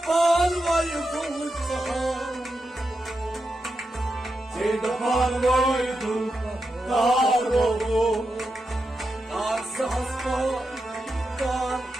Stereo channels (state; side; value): normal; both; correlation 0.88